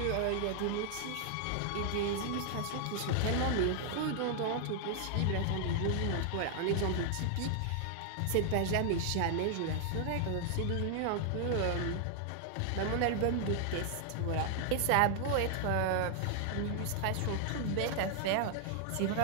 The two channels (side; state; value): both; different; correlation 0.00